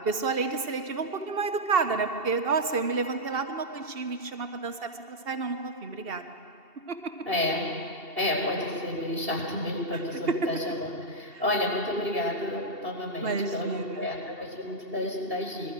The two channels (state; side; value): late; left; 2.7 ms